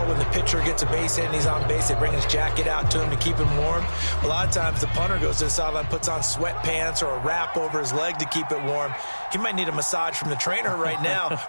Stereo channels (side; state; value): both; inverted; correlation -1.00